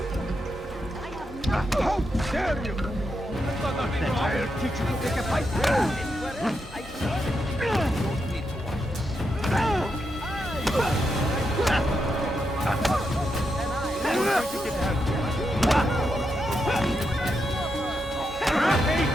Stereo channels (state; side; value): normal; both; correlation 0.84